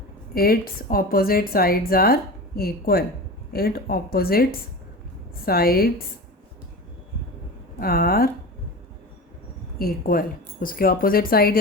its opposite sides are equal. It opposites sides are equal. उसके ऑपोजिट साइड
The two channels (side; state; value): both; normal; correlation 0.30